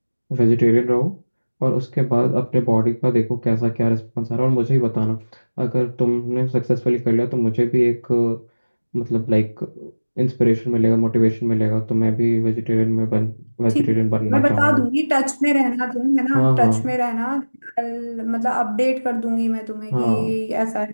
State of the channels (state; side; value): inverted; both; correlation -1.00